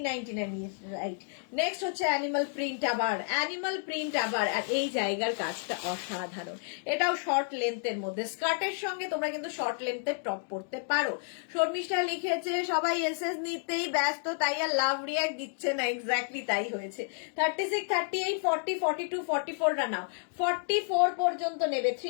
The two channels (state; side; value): silent; right; 57 dB below the other